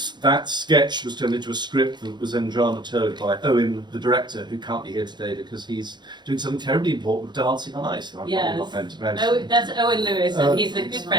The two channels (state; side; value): late; left; 0.21 ms